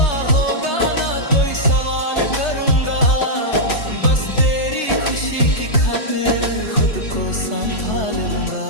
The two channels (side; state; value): right; late; 3.3 ms